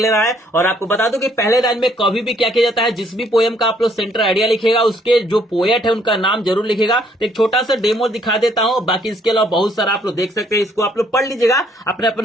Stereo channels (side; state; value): both; normal; correlation 0.66